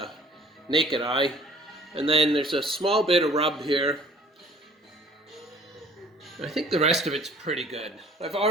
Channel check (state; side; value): normal; both; correlation 0.53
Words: naked eye. And then there's a small bit of rub here. I think the rest of it's pretty good. I've